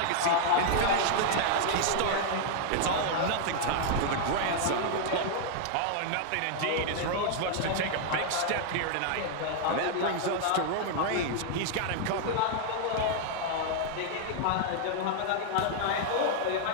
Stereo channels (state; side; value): different; both; correlation 0.00